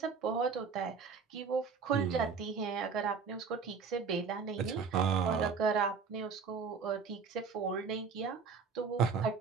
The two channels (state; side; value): quieter; left; 5.6 dB